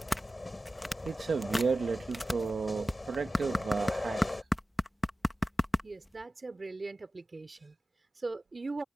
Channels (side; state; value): both; normal; correlation 0.95